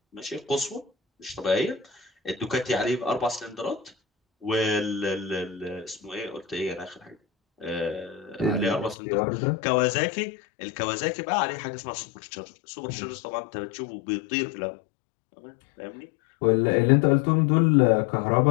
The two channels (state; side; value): drops out; right; at 9.0 s